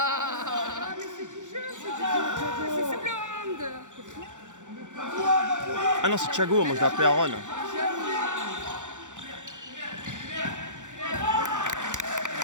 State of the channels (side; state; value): left; late; 0.85 ms